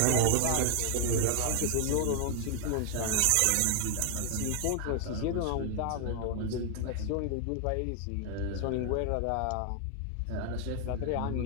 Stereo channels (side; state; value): both; different; correlation 0.00